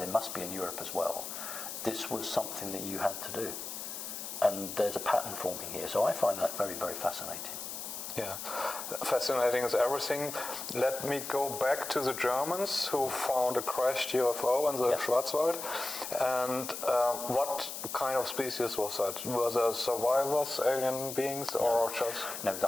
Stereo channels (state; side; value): noise; left; hiss, 7 dB below the sound